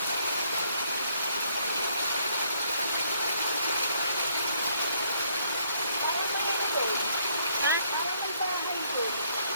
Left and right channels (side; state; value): both; inverted; correlation -0.69